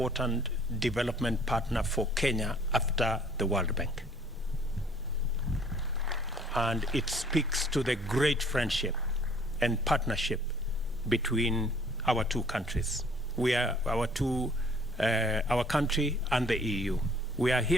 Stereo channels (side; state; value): both; normal; correlation 0.57